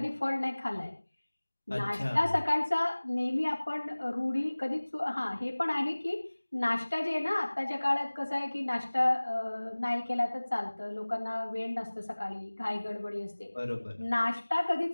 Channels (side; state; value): both; inverted; correlation -1.00